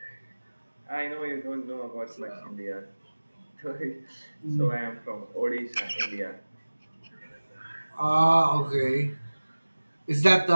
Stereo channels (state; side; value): inverted; both; correlation -1.00